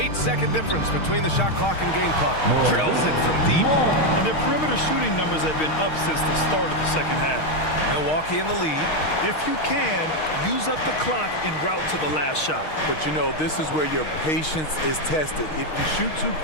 difference between the shot clock and game clock. Drills it from deep. And their perimeter shooting numbers have been up since the start of the second half. Milwaukee in the lead. If you can, use up the clock en route to the last shot. But you know, this is where your patience is tested. If you shoot too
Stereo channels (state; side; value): late; right; 6.4 ms